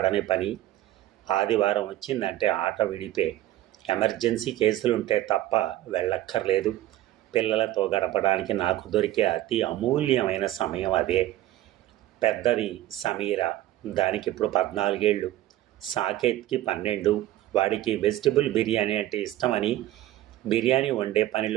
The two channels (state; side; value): quieter; left; 14.5 dB